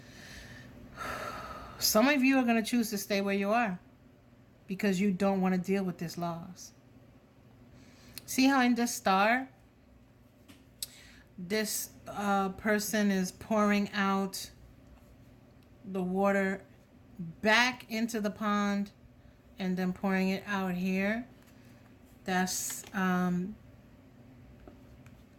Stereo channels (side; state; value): both; identical; correlation 1.00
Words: are going to choose to stay where you are because you don't want to deal with this loss. See how in this star, this person is pouring out the water back into the pond and then pouring it out here. That's